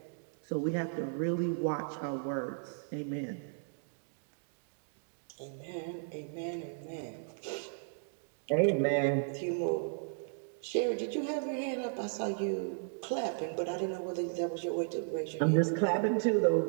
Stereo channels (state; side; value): silent; left; digital silence